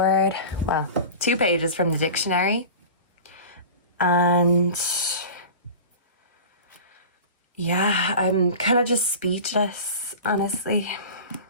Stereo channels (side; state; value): both; inverted; correlation -0.35